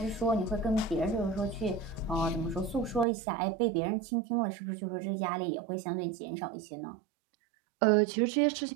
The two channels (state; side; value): drops out; left; at 3.1 s